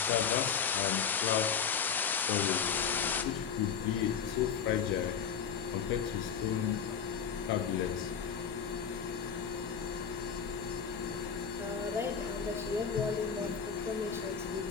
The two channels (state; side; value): quieter; right; 6.9 dB